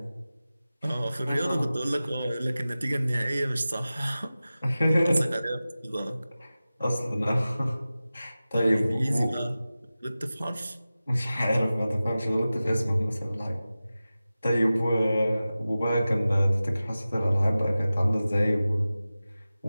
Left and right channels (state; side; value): inverted; both; correlation -0.96